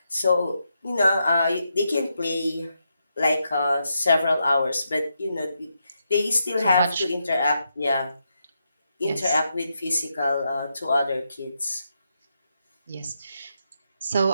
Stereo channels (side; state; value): both; inverted; correlation -0.83